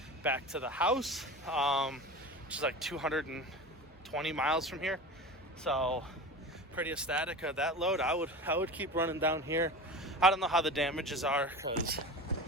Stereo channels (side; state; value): both; normal; correlation 0.31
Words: back to the house, which is like 220 miles from here. So pretty ecstatic of that load. I would keep running down here. I don't know how the damages are, because